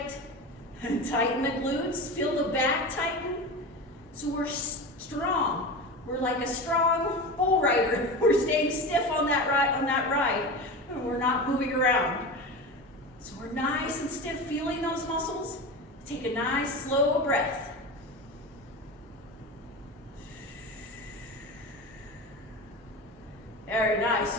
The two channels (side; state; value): both; normal; correlation 0.27